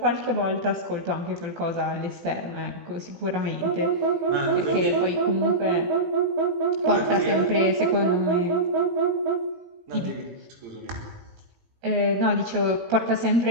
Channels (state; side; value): late; left; 18 ms